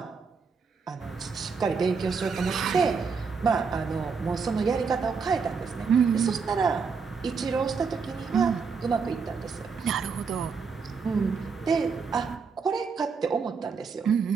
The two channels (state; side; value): quieter; left; 5.4 dB